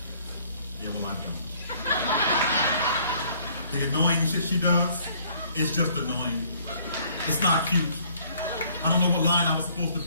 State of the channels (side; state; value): both; inverted; correlation -0.60